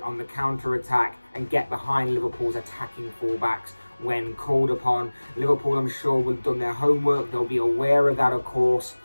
on the counter-attack and get behind Liverpool's attacking fullbacks when called upon. Liverpool, I'm sure, will have done their homework. They'll be aware of that, of course,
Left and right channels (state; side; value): inverted; both; correlation -1.00